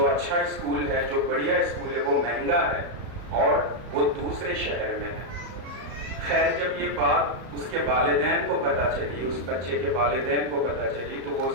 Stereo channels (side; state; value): left; late; 34 ms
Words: اچھا اسکول ہے، جو بڑھیا اسکول ہے، وہ مہنگا ہے اور وہ دوسرے شہر میں ہے۔ خیر جب یہ بات اس کے والدین کو پتہ چلی، اس بچے کے والدین کو پتہ چلی، تو وہ